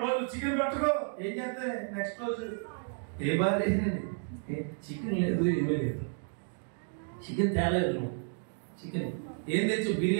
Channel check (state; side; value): silent; left; 56 dB below the other